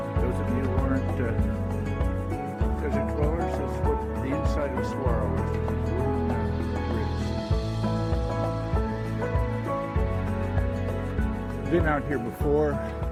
Been out here before.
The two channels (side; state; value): both; identical; correlation 1.00